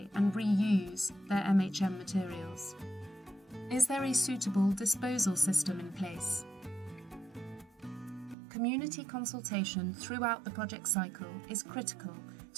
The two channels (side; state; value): left; drops out; at 8.3 s